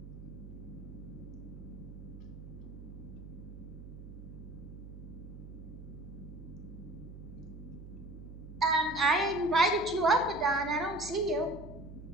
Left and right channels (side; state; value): right; noise; hum, 12 dB below the sound